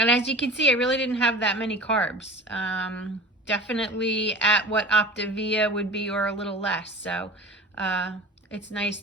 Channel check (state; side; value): normal; both; correlation 0.39